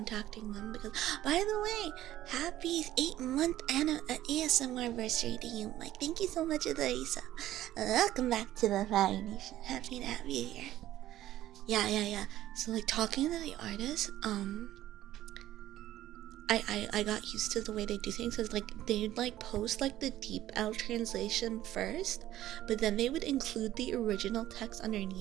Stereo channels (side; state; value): left; quieter; 13.8 dB